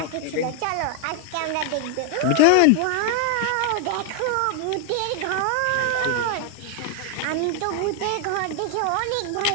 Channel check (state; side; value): different; both; correlation 0.00